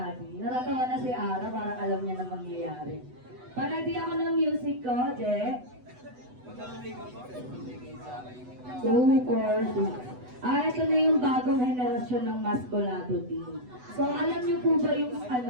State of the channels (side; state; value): left; late; 8.0 ms